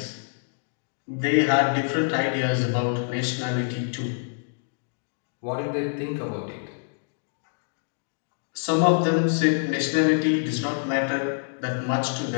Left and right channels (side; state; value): right; silent; digital silence